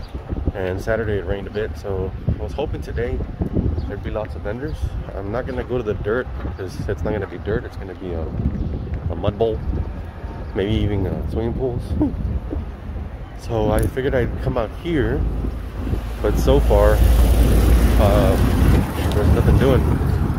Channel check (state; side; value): identical; both; correlation 1.00